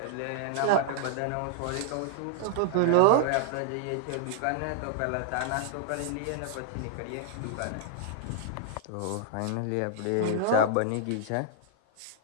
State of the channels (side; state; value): both; different; correlation -0.01